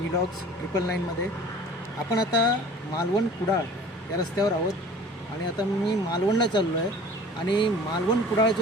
999मध्ये। आपण आता मालवण कुडाळ या रस्त्यावर आहोत आणि आता मी मालवणला चाललो आहे आणि मालवण कुडाळ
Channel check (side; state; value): both; normal; correlation 0.44